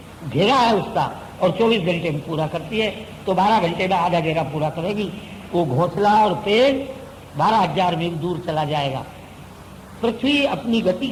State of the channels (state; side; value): identical; both; correlation 1.00